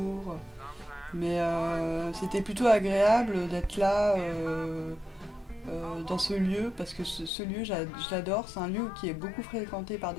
Mais c'était plutôt agréable d'être là dans ce lieu, parce que ce lieu, je l'adore. C'est un lieu qui est beaucoup fréquenté par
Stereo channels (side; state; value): right; drops out; at 7.3 s